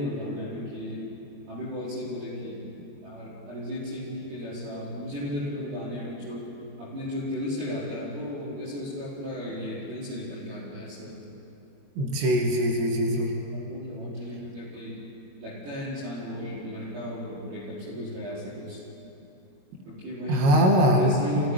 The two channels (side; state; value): left; late; 21 ms